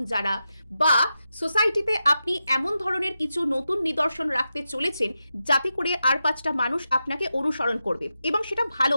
যারা বা সোসাইটিতে আপনি এমন ধরনের কিছু নতুন নিদর্শন রাখতে চলেছেন যাতে করে আর 5টা মানুষ আপনাকে অনুসরণ করবে এবং সেটা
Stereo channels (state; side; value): inverted; both; correlation -0.89